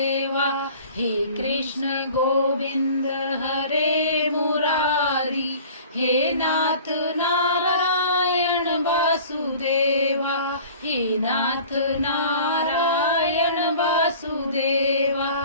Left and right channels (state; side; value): inverted; both; correlation -0.45